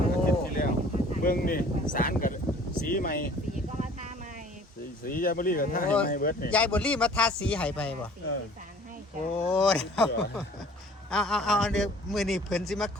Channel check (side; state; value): both; normal; correlation 0.51